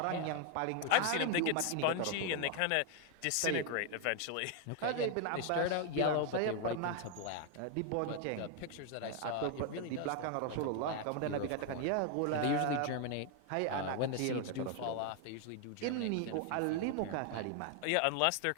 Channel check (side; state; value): both; different; correlation 0.00